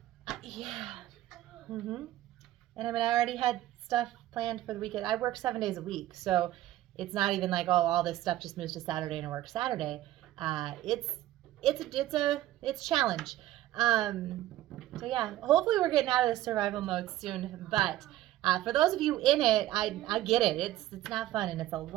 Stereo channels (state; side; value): quieter; left; 14.5 dB